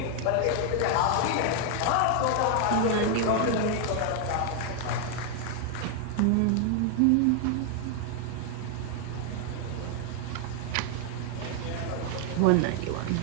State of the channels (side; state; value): both; different; correlation 0.00